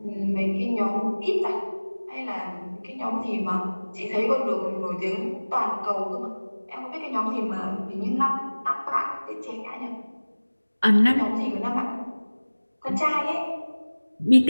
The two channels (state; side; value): inverted; both; correlation -1.00